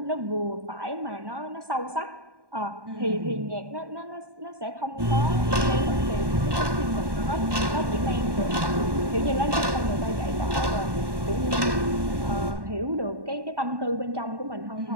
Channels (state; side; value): late; left; 1.1 ms